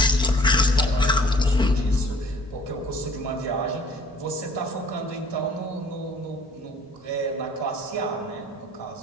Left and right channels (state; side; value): normal; both; correlation 0.54